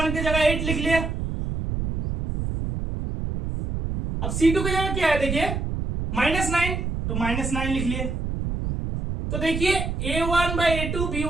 की जगह 8 लिख लिया। अब c2 की जगह क्या है देखिए -9, तो -9 लिख लिए। तो देखिए a1/a2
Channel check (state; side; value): noise; right; rumble, 3 dB below the sound